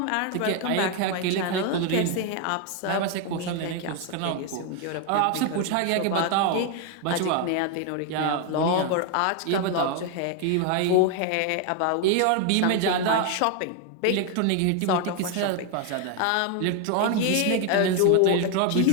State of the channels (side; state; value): both; different; correlation 0.01